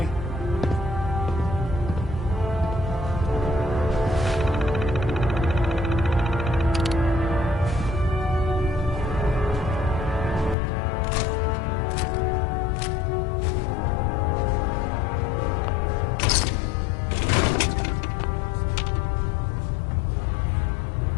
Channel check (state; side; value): drops out; right; at 10.6 s